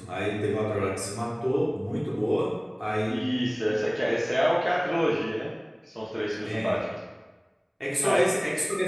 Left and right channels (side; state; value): both; identical; correlation 1.00